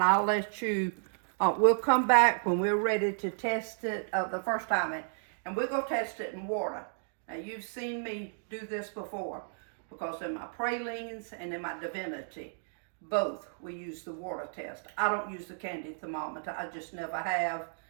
I'll let you, we'll come back when we're ready to test it the first time, and we're going to test it in water. Now, you've seen me do this before, because in my pralines and in my divinity, both we use the water test. I don't use the candy thermometer. I just never have,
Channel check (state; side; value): silent; left; digital silence